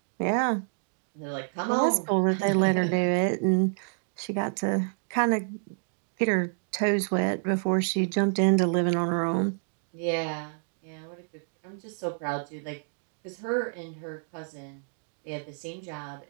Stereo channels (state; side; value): silent; left; digital silence